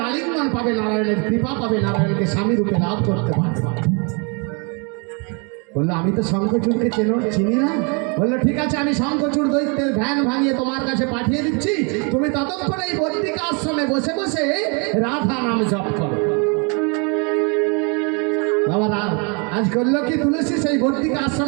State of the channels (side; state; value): left; quieter; 34.4 dB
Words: আলিঙ্গন পাবে, নারায়ণের কৃপা পাবে, নারায়ণকে স্বামী রূপে লাভ করতে পারবে। বললো আমি তো শঙ্খচূড়কে চিনি না। বললো ঠিক আছে, আমি শঙ্খচূড় দৈত্যের ধ্যান ভাঙিয়ে তোমার কাছে পাঠিয়ে দিচ্ছি, তুমি ততক্ষণ এই বদ্রিকা আশ্রমে বসে বসে রাধা নাম জপ করো। বাবা আজ করলো কি তুলসী সেই বদ্রিকা